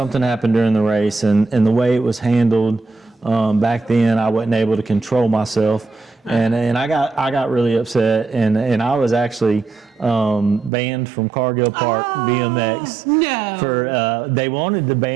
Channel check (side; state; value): left; drops out; at 10.7 s